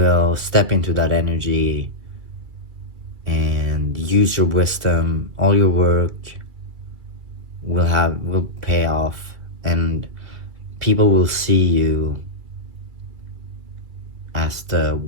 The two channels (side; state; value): left; late; 2.3 ms